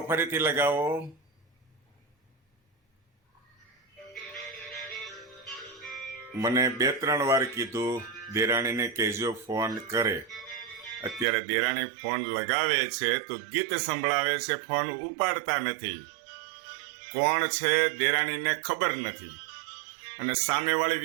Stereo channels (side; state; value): left; drops out; at 11.2 s